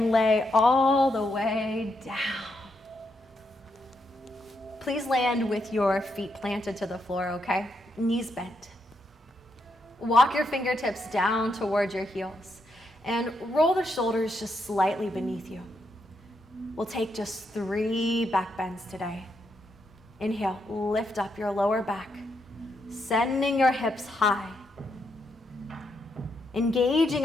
lay all the way down. Please land with your feet planted to the floor, okay? Knees bent. Walk your fingertips down towards your heels and roll the shoulders just slightly beneath you. We'll take just 3 back bends today. Inhale, lift up your lower back, sending your hips high. Engaging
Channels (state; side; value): normal; both; correlation 0.80